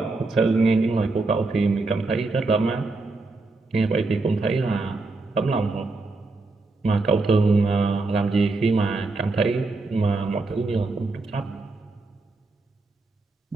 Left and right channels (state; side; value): quieter; left; 3.5 dB